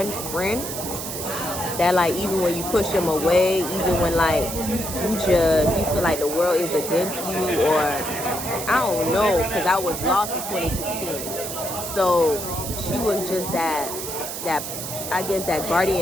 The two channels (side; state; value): right; noise; hiss, 6 dB below the sound